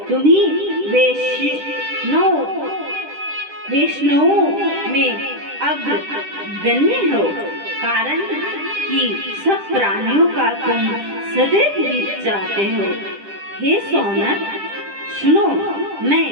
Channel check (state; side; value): late; left; 10 ms